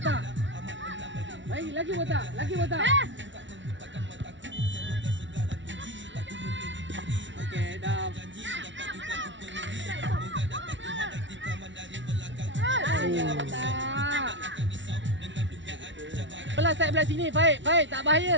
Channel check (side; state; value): left; late; 0.55 ms